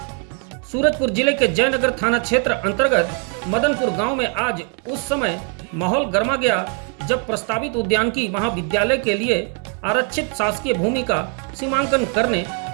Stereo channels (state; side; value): quieter; left; 38.3 dB